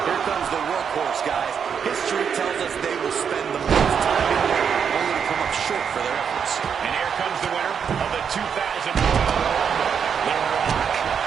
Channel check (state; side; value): quieter; left; 7.1 dB